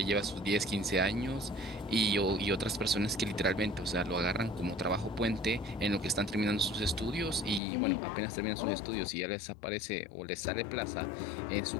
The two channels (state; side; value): drops out; right; at 7.6 s